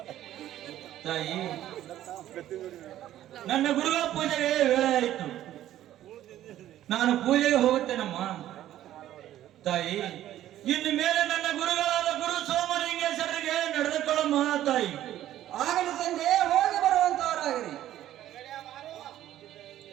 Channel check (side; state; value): left; quieter; 12.8 dB